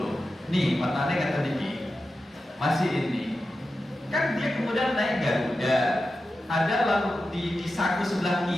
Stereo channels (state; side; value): normal; both; correlation 0.92